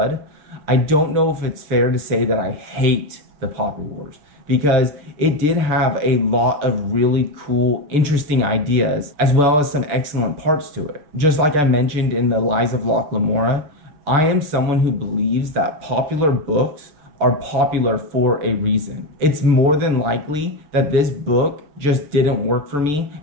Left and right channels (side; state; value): left; late; 6.6 ms